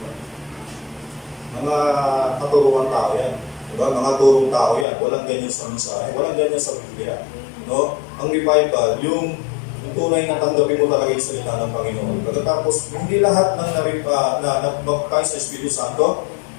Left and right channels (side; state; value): right; drops out; at 4.9 s